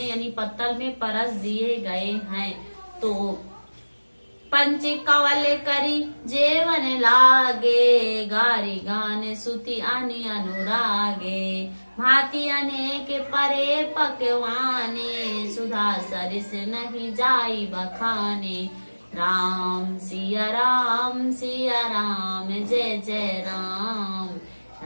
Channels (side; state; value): both; inverted; correlation -1.00